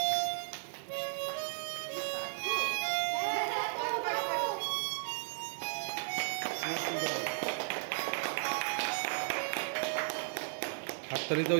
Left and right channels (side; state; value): left; silent; digital silence